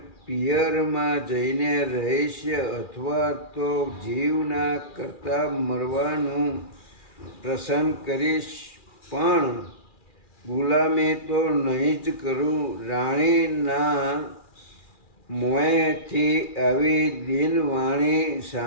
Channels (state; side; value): late; right; 2.4 ms